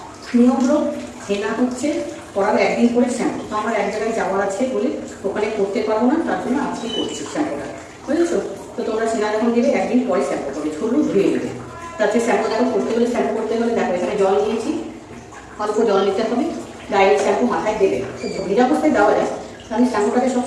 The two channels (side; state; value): both; identical; correlation 1.00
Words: নিয়ম হলো হেনা হচ্ছে করার একদিন করে শ্যাম্পু, তো আমার এক জায়গায় যাওয়ার আছে বলে ওখানে করতে পারবো না, তার জন্য আজকে করছি শ্যাম্পুটা, বুঝেছো? তো তোমরা সেনা যখন দেবে একদিন পরে শ্যাম্পু করবে, ঝুলু ধুয়ে নেবে। তাতে শ্যাম্পু দেখো করতে হলে শ্যাম্পু করতে হলে দেখো এখানে জল নিয়েছি, অল্প জল নিতে হবে, ডাইরেক্ট শ্যাম্পু মাথায় দেবে। তো ভিজা অবস্থায় দেওয়া যায়, আমি শ্যাম্পুটাকে